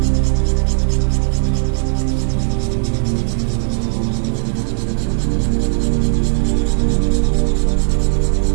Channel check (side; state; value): left; silent; digital silence